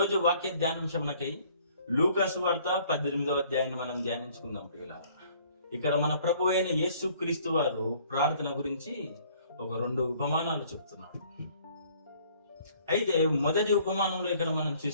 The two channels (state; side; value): inverted; both; correlation -0.58